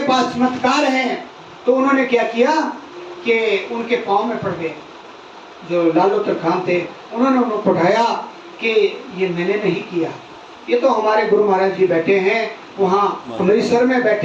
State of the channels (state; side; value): identical; both; correlation 1.00